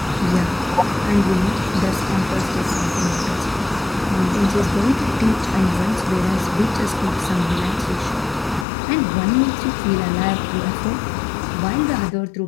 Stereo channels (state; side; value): drops out; right; at 8.7 s